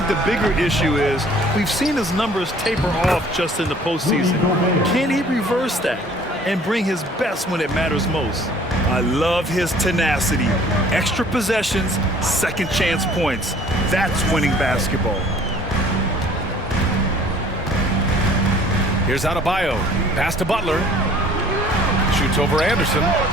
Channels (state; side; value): normal; both; correlation 0.53